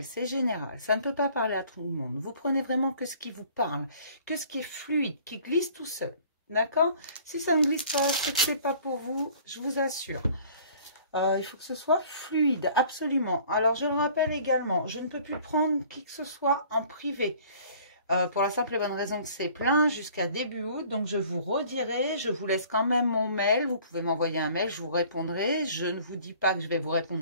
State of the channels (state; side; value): inverted; both; correlation -0.52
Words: c'est général, ça ne peut pas parler à tout le monde. Vous prenez vraiment que ce qui vous parle, que ce qui est fluide, qui glisse tout seul. D'accord? Si ça ne glisse pas, c'est que c'est pas pour vous, je vous assure. Il faut que ce soit fluide, absolument. Alors, je le rappelle également, je ne peux plus prendre qui que ce soit en privé. Pour la simple et bonne raison que c'est plein jusqu'à début août. Donc, je vous redirai, je vous laisse quand même mon mail. Vous pouvez m'envoyer un mail, je vous répondrai. Je ne vous dis pas que je vais vous